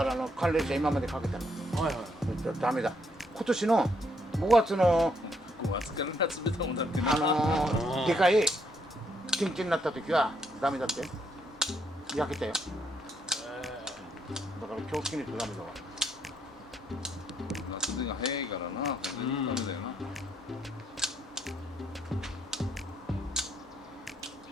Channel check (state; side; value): normal; both; correlation 0.73